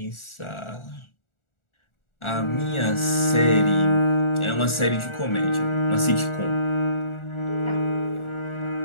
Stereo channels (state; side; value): late; right; 1.4 ms